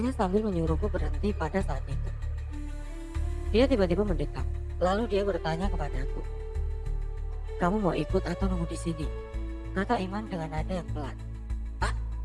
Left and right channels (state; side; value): identical; both; correlation 1.00